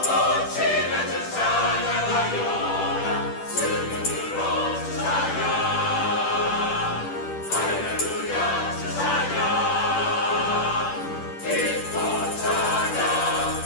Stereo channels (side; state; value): right; late; 10 ms